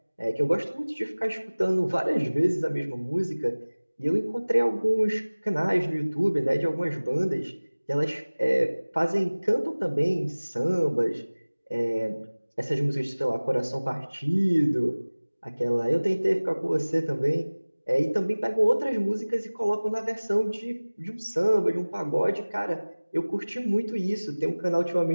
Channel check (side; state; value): both; inverted; correlation -1.00